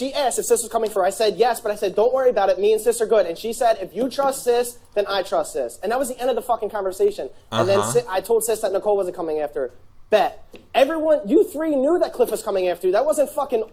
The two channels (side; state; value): both; identical; correlation 1.00